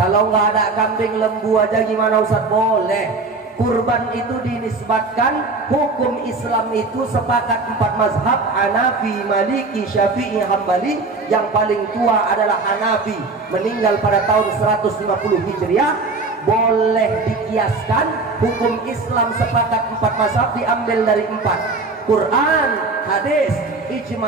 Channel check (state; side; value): quieter; left; 3.7 dB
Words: nggak ada kambing, lembu aja gimana Ustaz? Boleh. Kurban itu dinisbatkan, hukum Islam itu sepakat 4 mazhab, Hanafi, Maliki, Syafi'i, Hambali. Yang paling tua adalah Hanafi, meninggal pada tahun 150 Hijriah. Boleh dikiaskan, hukum Islam sepakat 4 mazhab diambil dari 4: Quran, hadis,